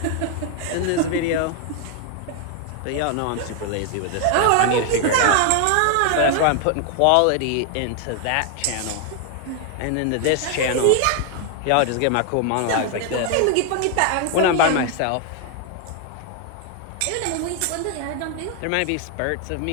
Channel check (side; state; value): both; different; correlation 0.00